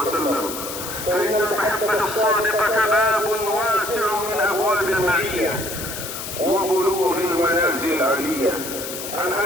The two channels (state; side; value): noise; left; hiss, 8 dB below the sound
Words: فإن المحبة الصادقة باب واسع من أبواب المعية وبلوغ المنازل العالية. عن